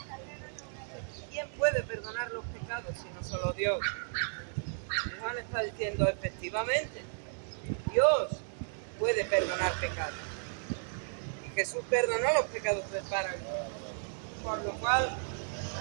¿Quién puede perdonar los pecados si no solo Dios? Y Juan está diciendo: efectivamente, Dios puede perdonar pecados. Y Jesús perdonó los pecados del paralítico. Por lo cual,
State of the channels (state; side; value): silent; left; digital silence